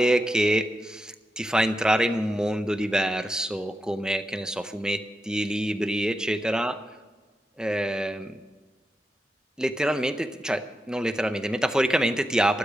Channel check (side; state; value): both; normal; correlation 0.87